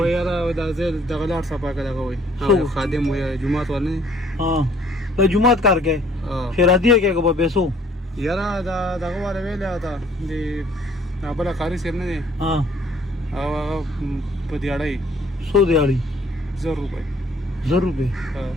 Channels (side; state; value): both; normal; correlation 0.59